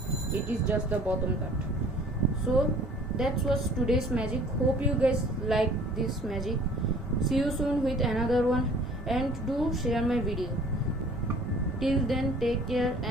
It is just the bottom cut. So that was today's magic. Hope you guys like this magic. See you soon with another one, and do share my video. Till then, take care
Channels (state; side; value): normal; both; correlation 0.51